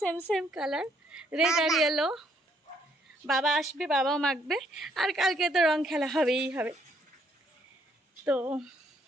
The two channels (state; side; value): normal; both; correlation 0.69